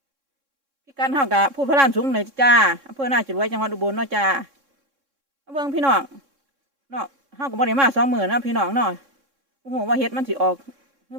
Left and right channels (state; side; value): late; left; 3.6 ms